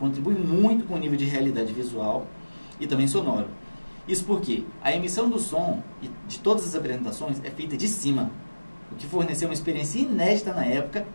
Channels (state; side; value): inverted; both; correlation -1.00